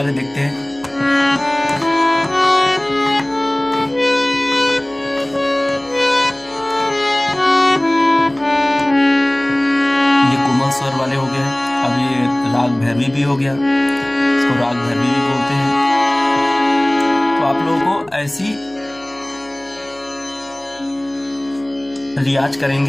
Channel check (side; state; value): left; noise; hum, 29 dB below the sound